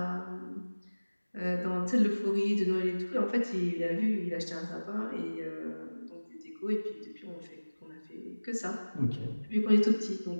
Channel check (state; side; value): inverted; both; correlation -1.00